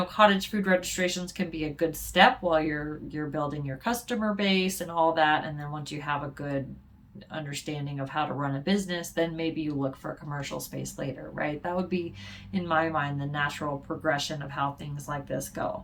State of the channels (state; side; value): identical; both; correlation 1.00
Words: cottage food registrations can be a good step while you're building your customer base and all that. And then once you have a good understanding of how to run a business, then maybe you look for a commercial space later, right? That would be, in my mind, the natural progression of how things like this go.